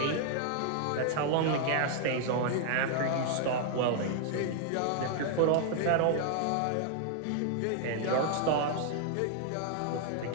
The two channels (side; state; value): both; different; correlation 0.00